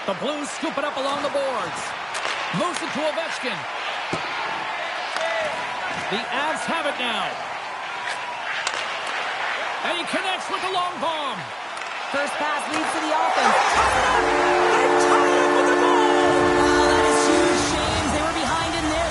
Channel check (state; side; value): identical; both; correlation 1.00